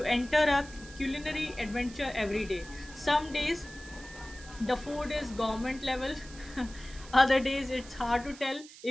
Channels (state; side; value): noise; right; hiss, 18 dB below the sound